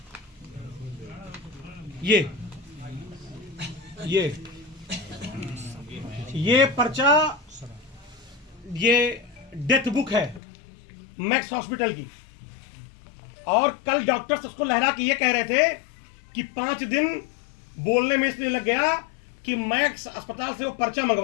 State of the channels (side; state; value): right; drops out; at 10.4 s